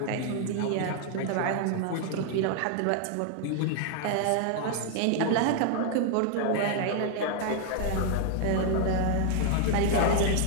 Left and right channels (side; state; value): both; different; correlation 0.00